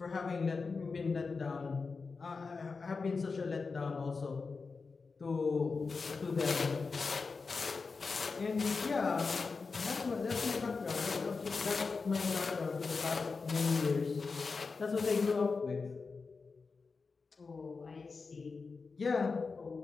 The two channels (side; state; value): right; quieter; 4.6 dB